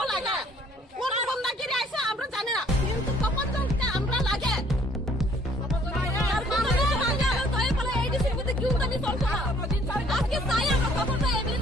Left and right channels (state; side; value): normal; both; correlation 0.60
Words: লাগে কোন বন্ধা কি আইছে আমরা জানি না, কিন্তু তখন চলতে আমরা লাগে আজকে চাই আমরা তখন